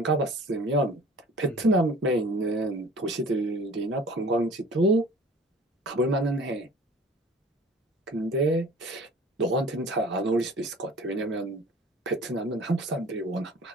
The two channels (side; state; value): both; normal; correlation 0.46